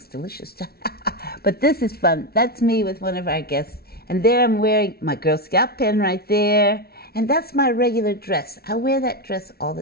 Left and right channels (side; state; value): right; late; 0.45 ms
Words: delicious. But this is fun. That's me with one of our guests. And there I'm wearing my Girl Scout pin right there. And that's my regular dress. I wear that dress all the